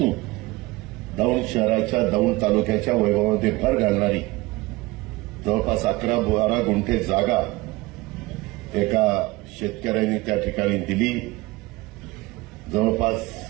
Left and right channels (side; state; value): left; quieter; 21.3 dB